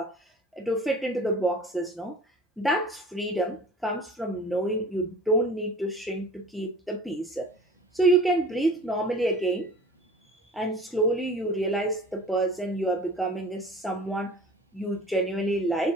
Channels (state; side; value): normal; both; correlation 0.43